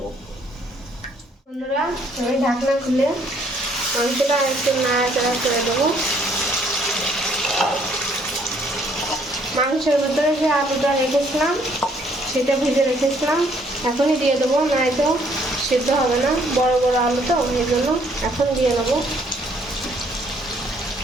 বন্ধুরা, আমি ঢাকনা খুলে মাংসটা একটু নাড়াচাড়া করে দেবো। মাংসের ভিতরে যে আলুটা রেখেছিলাম সেটা ভেজে রেখেছিলাম, এখনই দিয়ে দেবো, নয়তো সিদ্ধ হবে না, বড় বড় আলু তো, এই জন্য এখন দিয়ে নেবো।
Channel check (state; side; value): normal; both; correlation 0.65